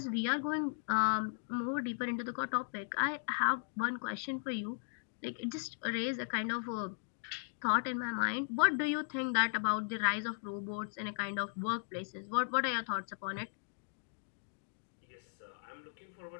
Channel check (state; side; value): silent; right; digital silence